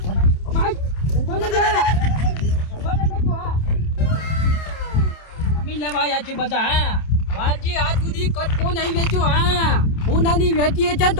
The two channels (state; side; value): late; right; 27 ms